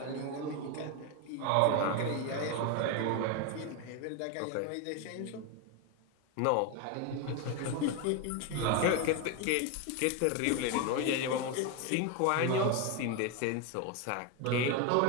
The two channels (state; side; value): different; both; correlation 0.02